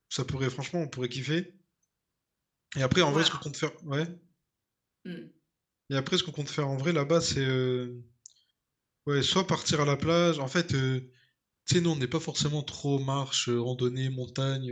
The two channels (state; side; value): identical; both; correlation 1.00